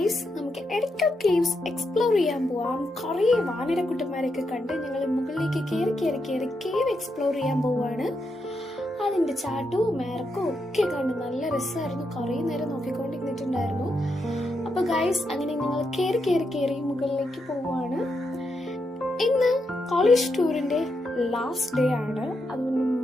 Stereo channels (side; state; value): both; normal; correlation 0.83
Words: നമുക്ക് Edakkal caves explore ചെയ്യാൻ പോവാം. കുറേ വാനരക്കുട്ടന്മാരൊക്കെ കണ്ട് ഞങ്ങൾ മുകളിലേക്ക് കയറി കേവ് എക്സ്പ്ലോർ ചെയ്യാൻ പോവാണ്. അതിന്റെ ചാട്ടവും മേറക്കും ഒക്കെ കണ്ട് നല്ല രസമായിരുന്നു. കുറേ നേരം നോക്കിക്കൊണ്ടിരുന്നിട്ടുണ്ടായിരുന്നു. അപ്പൊ ഗായ്സ്, അങ്ങനെ ഞങ്ങൾ കയറി മുകളിലേക്ക് പോവാണ്. ഇന്ന് കോളേജ് ടൂറിന്റെ ലാസ്റ്റ് ഡേ ആണ്. അതുകൊണ്ട്